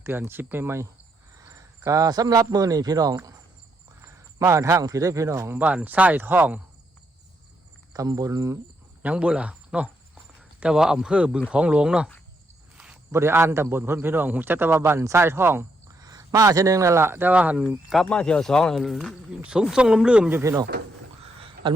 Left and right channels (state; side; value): normal; both; correlation 0.77